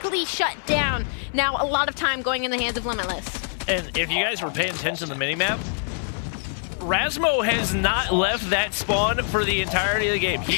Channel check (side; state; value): right; silent; 62 dB below the other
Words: shut down. Now a lot of time going in the hands of Limitless. And if you guys were paying attention to the minimap, Rasmo has not left that spawn for the entirety of the game.